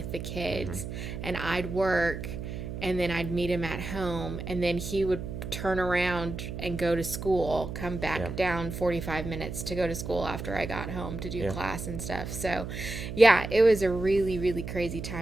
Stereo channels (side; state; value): right; noise; hum, 7 dB below the sound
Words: the kids, and I'd work, and then I'd meet him at home, and then he would turn around and go to school, come back Yeah. down 45 minutes to go to school after I got home to do Yeah. class and stuff. So, yeah, it was a really, really crazy